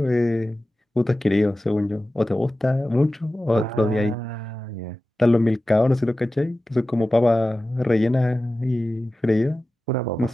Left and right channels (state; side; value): normal; both; correlation 0.95